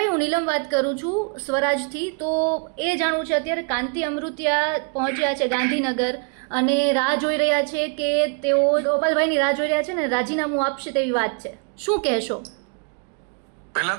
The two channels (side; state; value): left; quieter; 39.6 dB